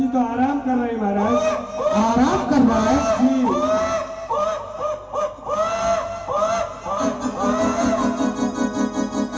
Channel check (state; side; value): identical; both; correlation 1.00